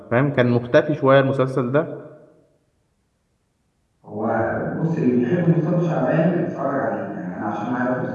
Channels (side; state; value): both; identical; correlation 1.00